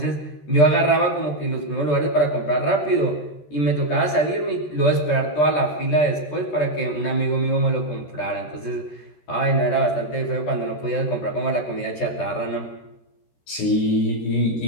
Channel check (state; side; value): late; right; 13 ms